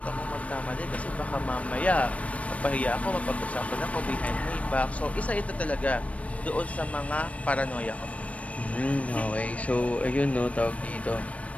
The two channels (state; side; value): late; right; 0.065 ms